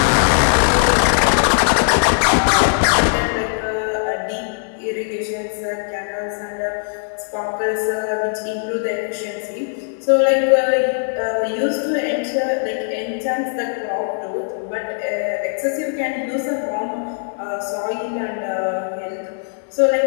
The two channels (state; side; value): silent; right; 60 dB below the other